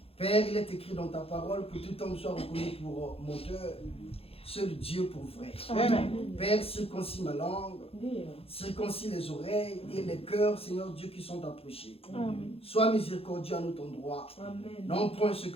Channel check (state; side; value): late; right; 0.28 ms